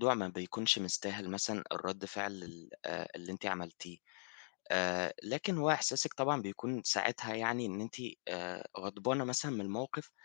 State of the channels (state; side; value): silent; right; digital silence